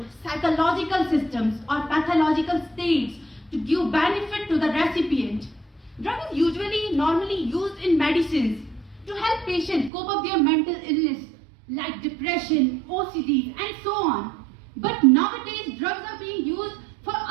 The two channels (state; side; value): drops out; left; at 9.9 s